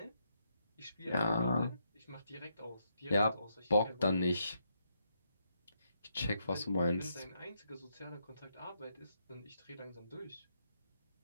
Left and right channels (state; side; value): inverted; both; correlation -0.78